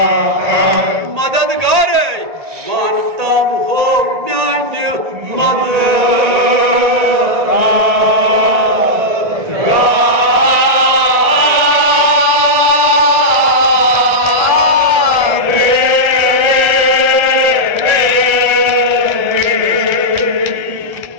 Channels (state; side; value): late; left; 1.7 ms